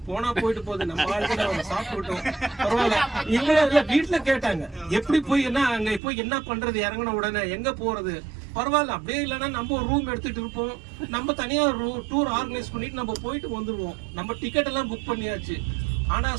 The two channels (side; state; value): left; drops out; at 6.0 s